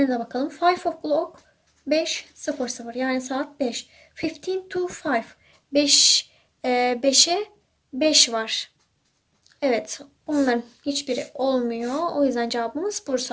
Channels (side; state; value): both; identical; correlation 1.00